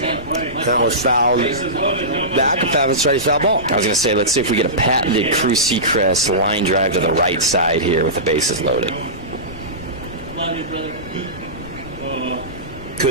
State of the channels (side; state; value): left; noise; rumble, 15 dB below the sound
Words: was fouled back. That's right, foul ball. I was going to say, let's see if we get a patented Cruz Sechrist line drive to the right side here with the bases loaded.